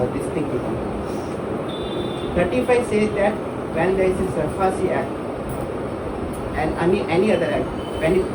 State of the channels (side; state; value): both; identical; correlation 1.00